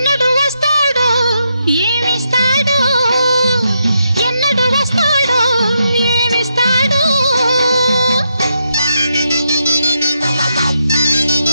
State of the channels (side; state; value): both; inverted; correlation -0.81